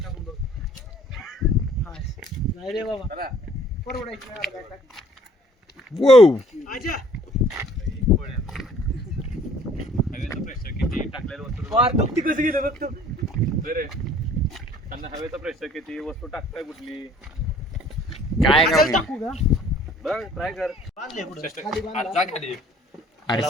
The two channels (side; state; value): both; normal; correlation 0.56